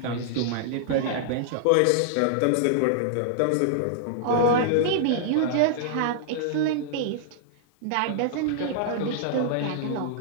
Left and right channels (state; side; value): different; both; correlation -0.01